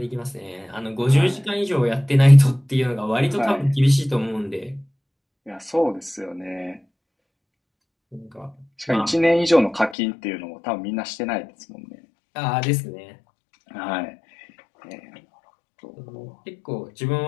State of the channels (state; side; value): drops out; right; at 10.0 s